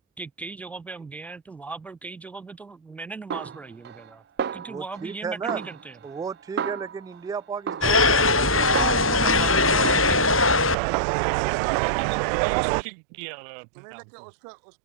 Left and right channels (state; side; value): drops out; left; at 10.8 s